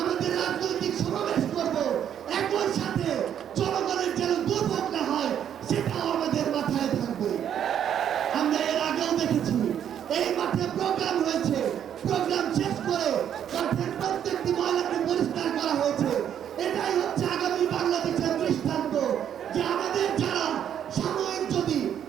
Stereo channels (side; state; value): left; quieter; 9.4 dB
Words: আমাদের রাজনৈতিক সমাবেশ করব, একই সাথে জনগণের যেন দুর্ভোগ না হয় সেটাও আমাদের মাথায় থাকবে। আমরা এর আগেও দেখেছি এই মাঠে প্রোগ্রাম হয়েছে, প্রোগ্রাম শেষ করে মাঠের প্রত্যেকটি ময়লাকে পরিষ্কার করা হয়েছে। এটাই হচ্ছে আগামী বাংলাদেশের দৃষ্টান্ত যে আমাদের যারা সাময়িক যদি